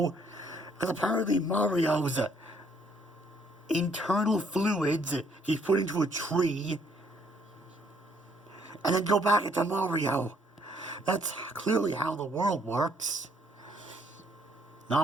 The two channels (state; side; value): normal; both; correlation 0.66